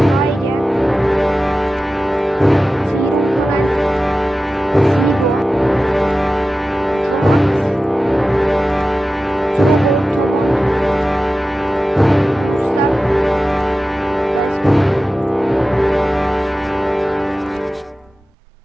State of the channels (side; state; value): both; normal; correlation 0.94